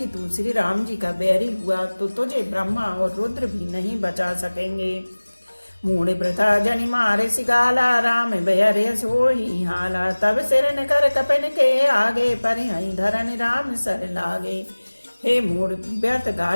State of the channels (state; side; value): inverted; both; correlation -1.00